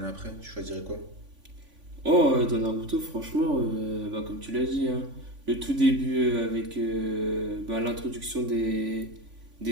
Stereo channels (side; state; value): left; late; 3.5 ms